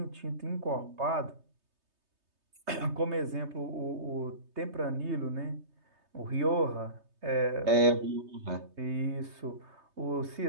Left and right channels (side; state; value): left; late; 3.2 ms